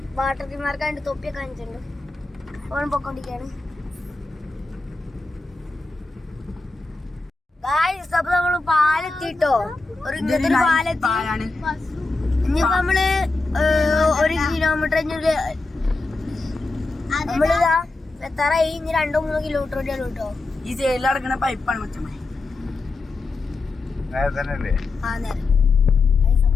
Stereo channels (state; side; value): quieter; right; 3.4 dB